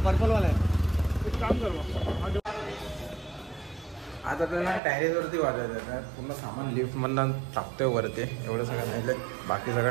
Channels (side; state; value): left; drops out; at 4.8 s